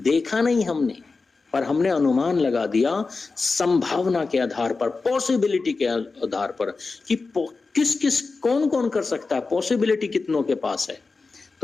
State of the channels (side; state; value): right; quieter; 4.1 dB